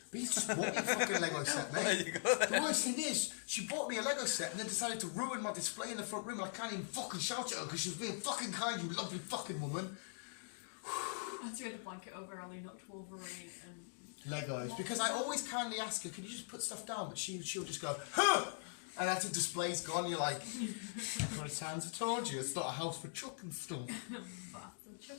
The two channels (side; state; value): right; silent; digital silence